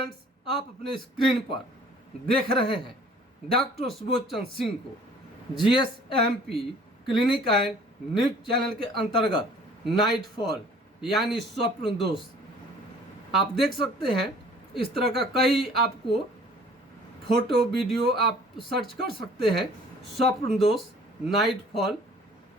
आप अपने screen पर देख रहे हैं डॉक्टर सुबोध चंद्र सिंह को GSMP clinic and news channel के अंतर्गत नाइट फॉल यानी स्वप्न दोष। आप देख सकते हैं इस तरह का कई आपको फोटो वीडियो आप सर्च कर सकते हैं। स्वप्न दोष नाइट फॉल।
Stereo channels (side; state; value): both; normal; correlation 0.52